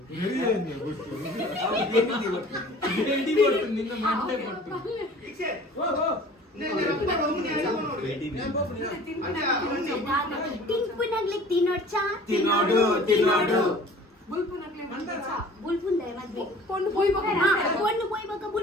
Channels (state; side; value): normal; both; correlation 0.47